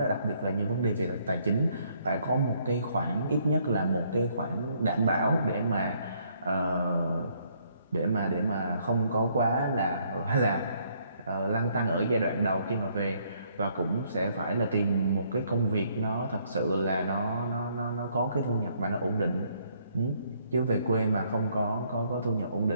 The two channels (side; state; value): both; inverted; correlation -0.68